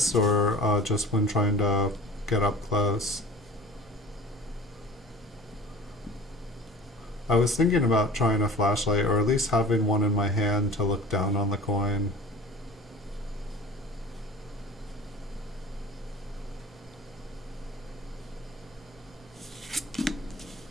or just when trying to get up close? I was thinking about trying a flashlight, or at least having one in my hand to look down on the coin.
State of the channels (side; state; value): both; normal; correlation 0.42